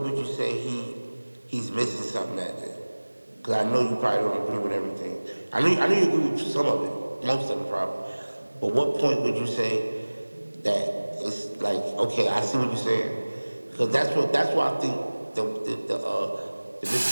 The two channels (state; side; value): inverted; both; correlation -1.00